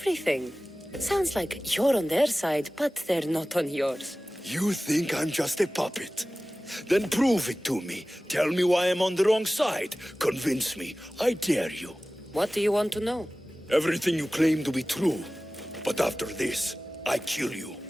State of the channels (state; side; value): normal; both; correlation 0.97